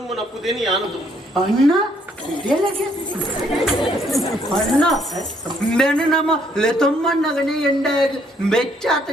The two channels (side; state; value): both; normal; correlation 0.68